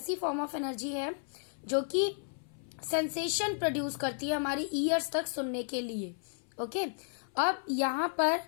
form of energy है जो कि sensation produce करती है हमारी ईयर्स तक सुनने के लिए. ओके, अब यहाँ पर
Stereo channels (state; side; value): silent; right; 56 dB below the other